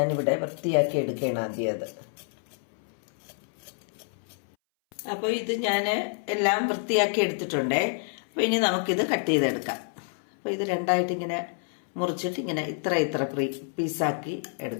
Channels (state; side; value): silent; right; 59 dB below the other